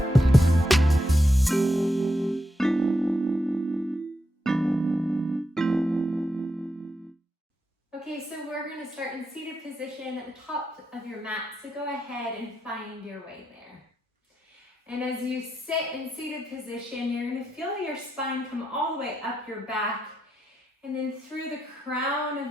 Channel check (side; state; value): both; normal; correlation 0.84